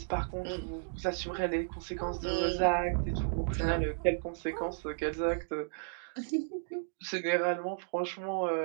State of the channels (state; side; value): silent; left; digital silence